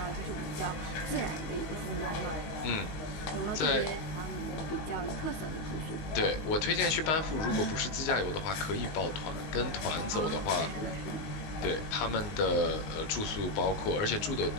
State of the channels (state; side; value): late; right; 19 ms